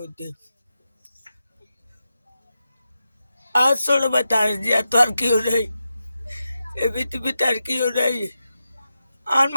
আজ চলবে তার জিয়া তো আর কেউ নেই, এ পৃথিবীতে আর কেউ নেই। আর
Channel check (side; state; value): both; inverted; correlation -0.90